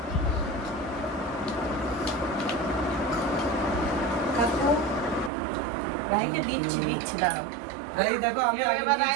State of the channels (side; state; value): left; drops out; at 5.3 s